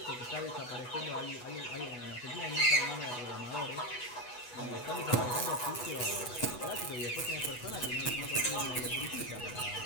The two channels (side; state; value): right; late; 8.1 ms